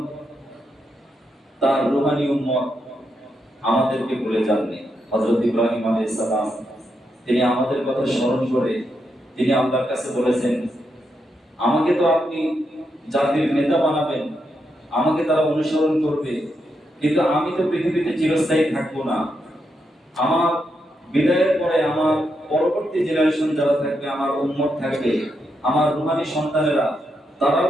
তার রূহানী উম্মত আমাদেরকে ভুলে যাননি। হযরত ইব্রাহিম আলাইহিস সালাম তিনি আমাদের কথা স্মরণ করে তিনি আল্লাহর কাছে বলেছেন, আমাকে তো আপনি জাতির নেতা বানাবেন, আমাকে তারা অনুসরণ করবে, কিন্তু আমি তো পৃথিবীতে চিরস্থায়ী থাকবো না। আমার বিদায়ের পরে আমার পরবর্তী জেনারেশন যারা থাকবে, আমার উম্মত থাকবে, আমার রূহানী সন্তানেরা, তারাও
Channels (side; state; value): both; normal; correlation 0.82